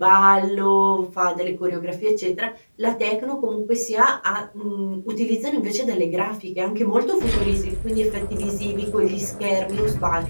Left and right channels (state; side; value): inverted; both; correlation -1.00